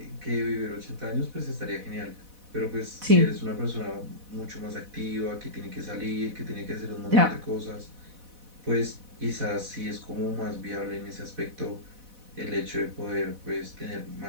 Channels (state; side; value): late; left; 4.1 ms